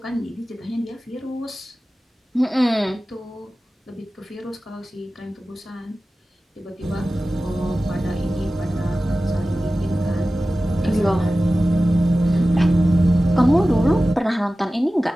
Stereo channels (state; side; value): normal; both; correlation 0.96